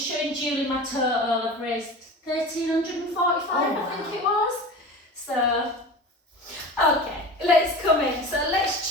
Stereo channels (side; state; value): both; normal; correlation 0.33